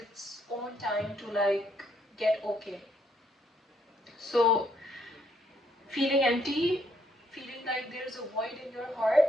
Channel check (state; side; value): normal; both; correlation 0.71